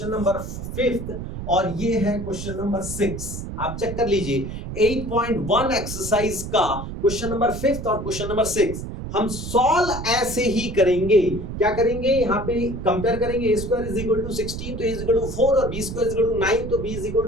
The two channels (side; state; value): right; noise; rumble, 7 dB below the sound